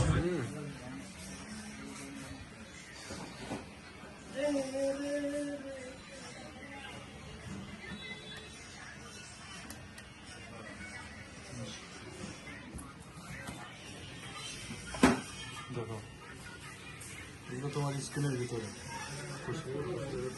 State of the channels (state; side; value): identical; both; correlation 1.00